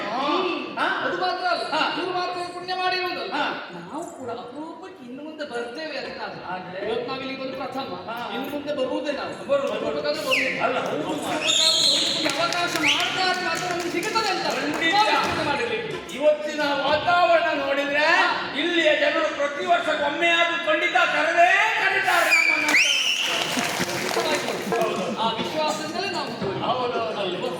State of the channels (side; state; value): both; identical; correlation 1.00